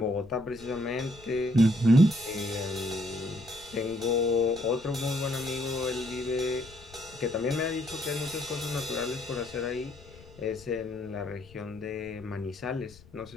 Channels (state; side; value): noise; left; rumble, 21 dB below the sound